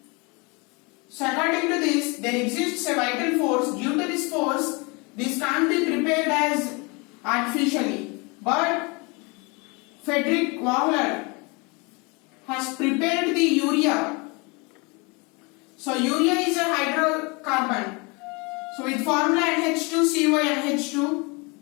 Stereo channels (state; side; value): quieter; right; 29.0 dB